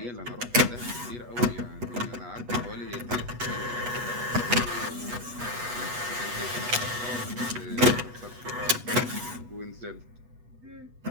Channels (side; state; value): left; late; 8.2 ms